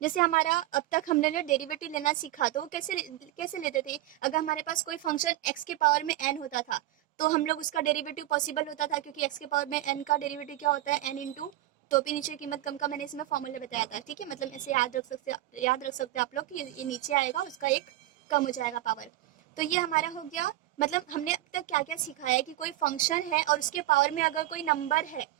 हमारा अब तक हमने ना डेरिवेटिव लेना सीखा, तो वो कैसे लेते थे, अगर हमारे पास कोई फंक्शन x के पावर में n होता था तो हम लोग उसका डेरिवेटिव पॉसिबल होता था, क्योंकि x के पावर में n का डेरिवेटिव क्या होता है, n इंटू टोपी नीचे कीमत कम का, मैंने इसमें फॉर्मूला बताया था। ठीक है, मतलब ऐसे याद रख सकते आप लोग कि ये नीचे आएगा, उसका एक कम हो जाएगा पावर। तो ये हमारा हो गया, मतलब हमने अब तक क्या क्या सिखाया है कि कोई फंक्शन है और उसके पावर में अगर कोई नंबर है,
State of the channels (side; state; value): left; quieter; 15.4 dB